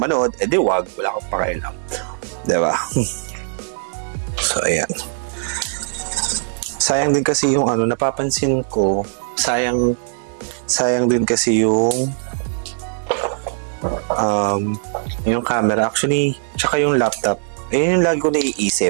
manood, edi wag, wala akong pakialam, diba? So ayan, sayang din kasi yung napapansin ko, sayang din kasi yung camera actually, tsaka yung laptop. Ayun yung lagi ko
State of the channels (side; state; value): left; silent; digital silence